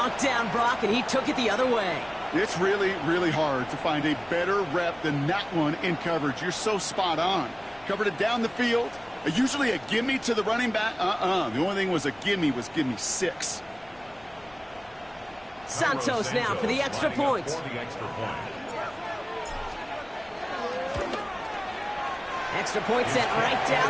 down, Brock, and he took it the other way. It's really, really hard to find a better rep than that one in coverage. You're so spot on. Covered it down the field. Usually a gimme to the running back. The only thing was a gimme 6. Santos now for the extra point. Extra point sent right down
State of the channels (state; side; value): noise; left; rumble, 28 dB below the sound